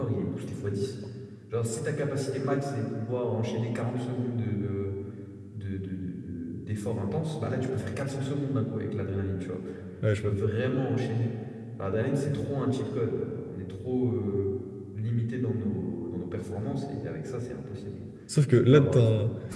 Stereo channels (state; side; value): identical; both; correlation 1.00